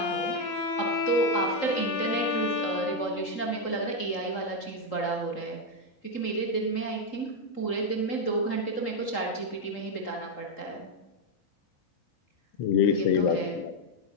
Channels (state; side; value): late; right; 3.8 ms